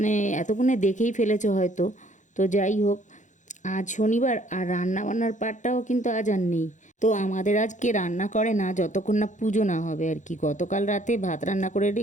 এতক্ষণে দেখেই ফেলেছো হয়তো। তো যাই হোক, আজ শনিবার আর রান্না বান্নার পার্টটাও কিন্তু আজ আর নেই। তো আমাদের আজকে রান্না করে না যতক্ষণ না পুজো না হবে আর কি। গতকাল রাতে ভাত রান্না করে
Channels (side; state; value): right; late; 0.36 ms